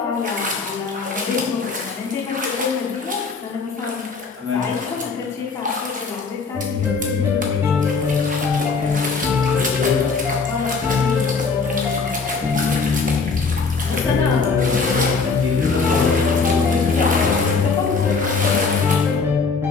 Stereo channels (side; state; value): right; quieter; 4.7 dB